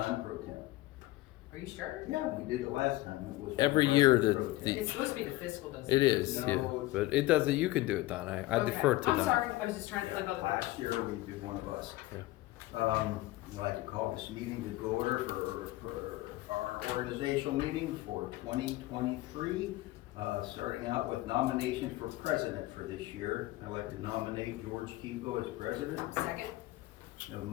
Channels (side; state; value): right; quieter; 18.3 dB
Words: pro temp. Are you sure? Yeah, we did it last time. It was Every one of year us that pro temp. the- It's supposed to be the fiscal, doesn't It it? is, No, yeah, it's- but it doesn't, you can do it, Don, I Okay. defer to Don. I'm sorry, I was just trying to flip out the. Last year, we did one of us. I'd like to call this meeting to go order for our organizational meeting for 2023. Starting out with nominations for president for this year. I'd like to nominate George Kiko as president. Second? Have a